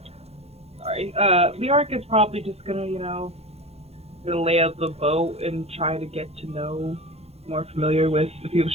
Sorry. Leoric is probably just gonna, gonna lay out the boat and try to get to know more familiar with the people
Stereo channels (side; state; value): left; late; 0.30 ms